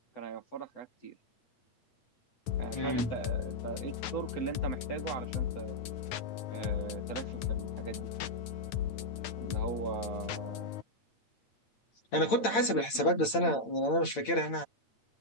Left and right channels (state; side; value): late; right; 8.8 ms